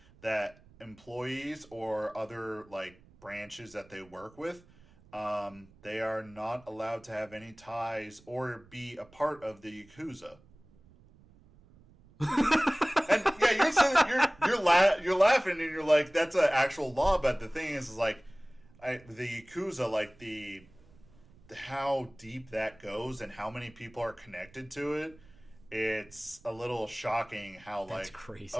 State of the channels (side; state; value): right; noise; rumble, 26 dB below the sound